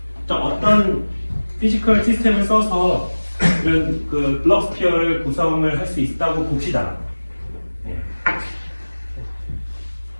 자, 어떤 피지컬 시스템을 써서 이런 그 블록 스피어를 구성을 할 수 있다고 봅시다.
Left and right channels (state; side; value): inverted; both; correlation -1.00